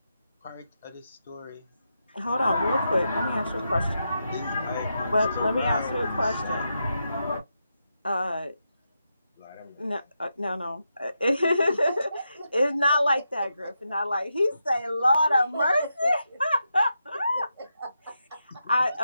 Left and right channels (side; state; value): both; inverted; correlation -0.86